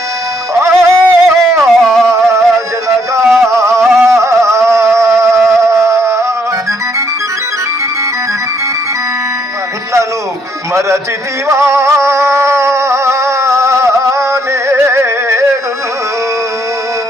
ఆ జనగా నన్ను మరచితివా నేడు,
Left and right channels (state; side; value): normal; both; correlation 0.71